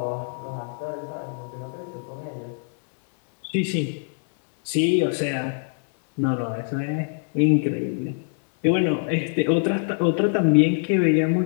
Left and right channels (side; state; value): right; silent; digital silence